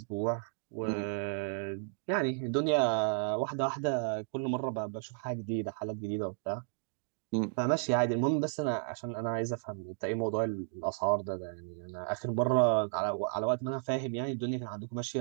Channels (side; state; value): left; silent; digital silence